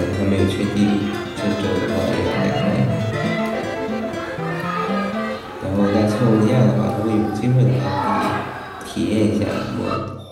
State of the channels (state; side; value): identical; both; correlation 1.00